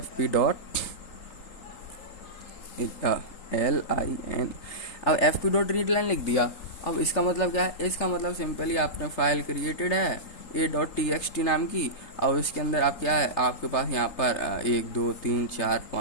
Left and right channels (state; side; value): late; right; 3.8 ms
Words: डॉट LIN। अब fp डॉट रीड लाइन लिख दिया। अब इसका मतलब क्या है, इसका मतलब सिंपली आपने फाइल क्रिएटेड है a.txt नाम की, और उसके अंदर आप क्या है, आपके पास यहाँ पर 1 2 3 4